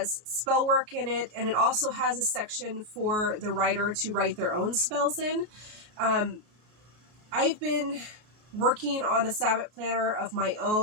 spell work in it, and it also has a section for the writer to write their own spells in. I've been working on a Sabbat planner of my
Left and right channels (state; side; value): late; left; 33 ms